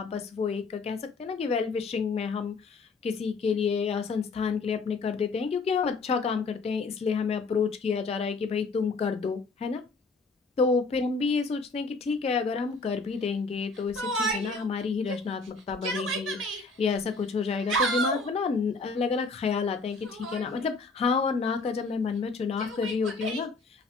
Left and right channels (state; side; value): quieter; right; 4.0 dB